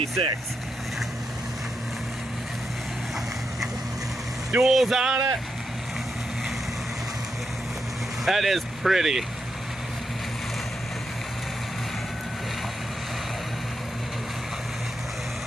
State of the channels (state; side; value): normal; both; correlation 0.84